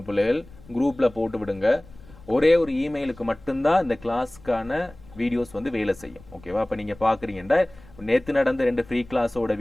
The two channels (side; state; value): left; noise; rumble, 22 dB below the sound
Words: பிள்ளைகள், குரூப்பில் போட்டு விடுங்க. ஒரே ஒரு இமெயிலுக்கு மட்டும்தான் இந்த கிளாஸ்க்கான வீடியோஸ் வந்து வேலை செய்யும். ஓகேவா? அப்போ நீங்கள் பார்க்குறீங்கன்னா நேற்று நடந்த 2 ஃப்ரீ கிளாஸோட